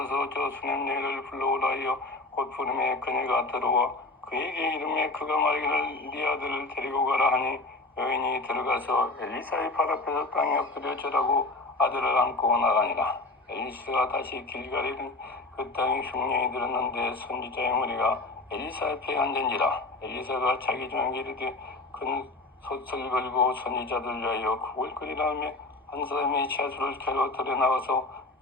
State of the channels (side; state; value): right; quieter; 3.1 dB